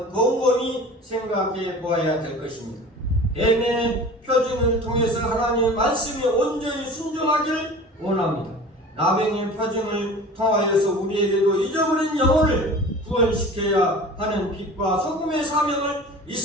곰곰이 생각해 보아야 될 것입니다. 뱀의 표징을 통해서 하나님의 말씀에 온전히 순종하기를 원합니다. 나병의 표징을 통하여서 우리에게도 잊어버린 영혼을 구원시켜야 하는 빛과 소금의 사명을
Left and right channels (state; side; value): normal; both; correlation 0.40